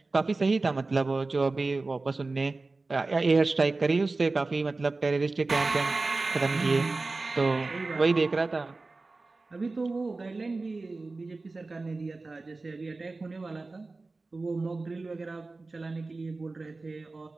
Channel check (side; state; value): left; quieter; 3.5 dB